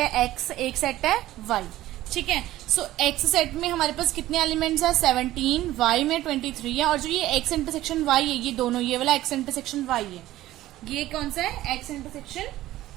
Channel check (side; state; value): left; quieter; 15.3 dB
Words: है एक्स, एक सेट है वाई। ठीक है, सो एक्स सेट में हमारे पास कितने एलिमेंट्स है 17, वाई में 23 है, और जो ये एक्स इंटरसेक्शन वाई है, ये दोनों, ये वाला एक्स इंटरसेक्शन वाई है, ये कौन सा है एक्स इंटरसेक्शन